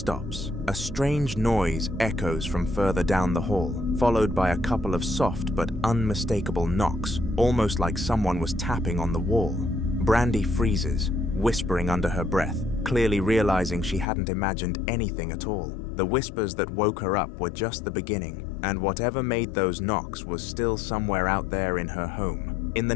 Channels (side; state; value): right; drops out; at 14.1 s